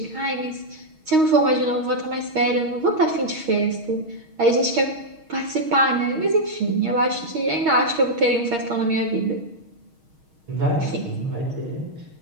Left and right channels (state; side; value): late; left; 6.4 ms